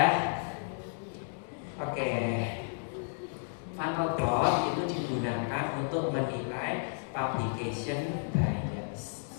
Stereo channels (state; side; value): silent; right; digital silence